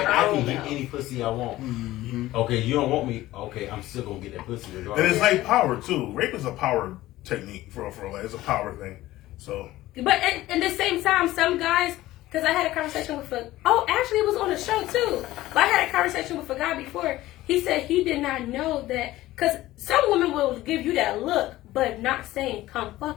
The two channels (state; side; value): quieter; right; 16.3 dB